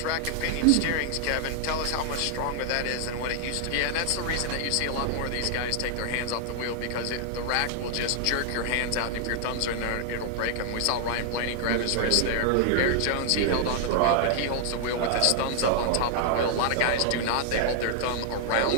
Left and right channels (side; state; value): both; different; correlation 0.00